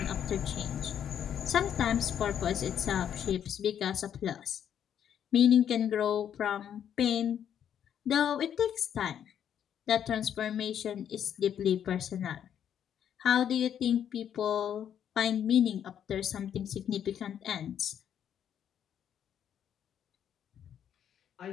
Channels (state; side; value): quieter; right; 9.3 dB